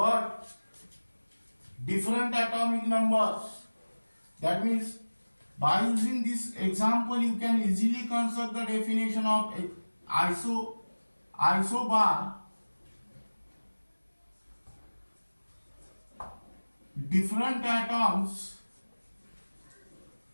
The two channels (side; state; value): both; inverted; correlation -1.00